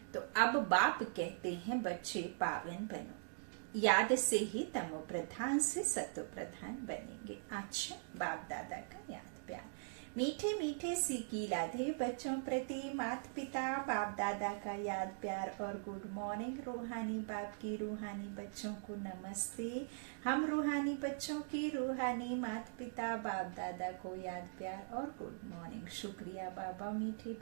तो अब बाप कहते हैं बच्चे पावन बनो, याद से ही तमो प्रधान से सतो प्रधान बनेंगे। अच्छा, बाप दादा का याद प्यार, मीठे मीठे सीखी लाधे बच्चों प्रति माता पिता बाप दादा का याद प्यार और गुड मॉर्निंग। रूहानी बाप की रूहानी बच्चों को नमस्ते। हम रूहानी बच्चों की रूहानी माता पिता बाप दादा को याद प्यार और गुड मॉर्निंग। शुक्रिया बाबा, मीठे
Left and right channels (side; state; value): left; silent; digital silence